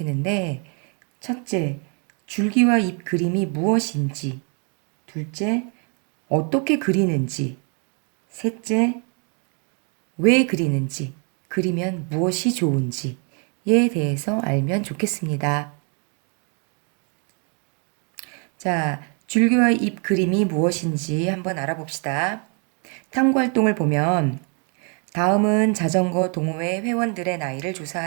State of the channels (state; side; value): quieter; left; 38.3 dB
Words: 첫째, 줄기와 잎 그림이 무엇인지, 둘째, 어떻게 그리는지, 셋째, 왜 그리는지, 그리면 무엇이 좋은지에 대해서 알면 좋겠습니다. 자, 줄기와 잎 그림이 무엇인지 한번 알아봅시다. 탐구 활동을 보면 다음은 자전거 동호회 회원들의 나이를